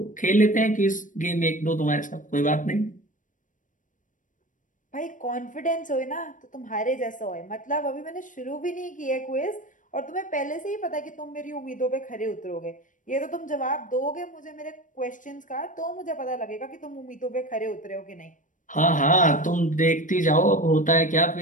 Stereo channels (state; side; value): late; right; 0.38 ms